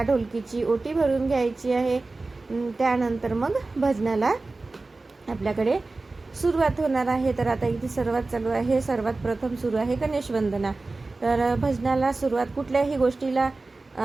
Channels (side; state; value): left; quieter; 3.4 dB